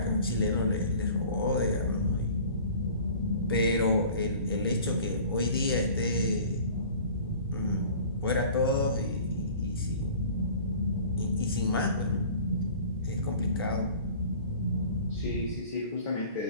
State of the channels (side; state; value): both; inverted; correlation -0.46